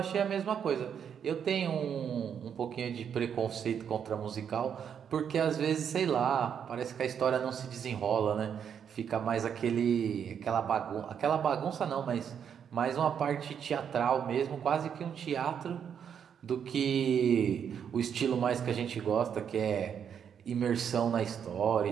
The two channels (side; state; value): left; quieter; 8.0 dB